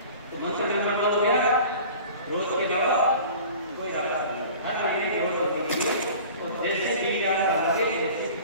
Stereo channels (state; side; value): inverted; both; correlation -0.42